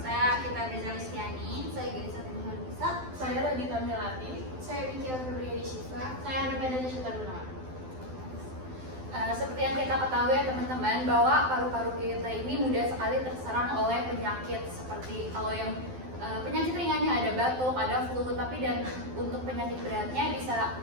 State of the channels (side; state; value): left; late; 12 ms